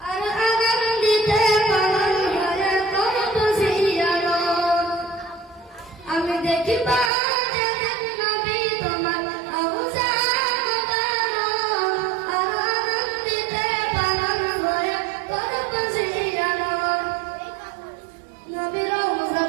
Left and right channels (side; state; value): left; drops out; at 7.1 s